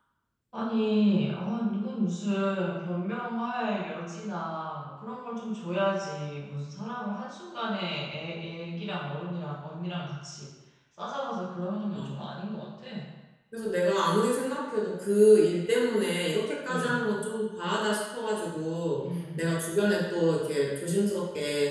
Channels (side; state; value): both; identical; correlation 1.00